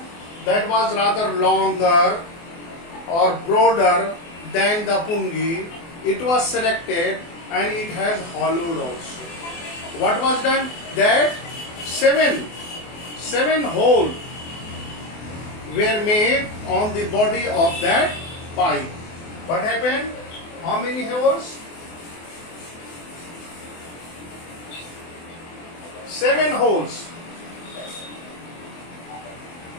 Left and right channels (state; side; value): late; right; 24 ms